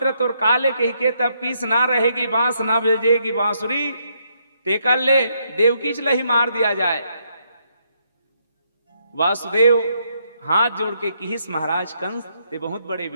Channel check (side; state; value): both; inverted; correlation -0.75